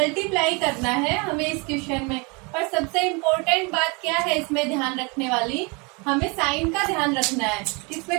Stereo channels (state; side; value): quieter; left; 30.0 dB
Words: करना है हमें इस क्वेश्चन में। और सबसे इम्पोर्टेंट बात क्या है इसमें ध्यान रखने वाली? हमें साइन का ध्यान रखना है,